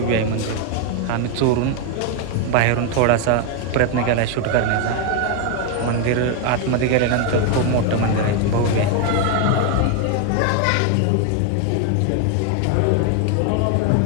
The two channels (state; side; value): different; both; correlation 0.01